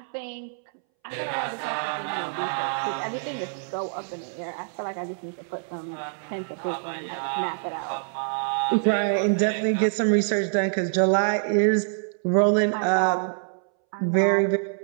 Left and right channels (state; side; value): silent; left; 61 dB below the other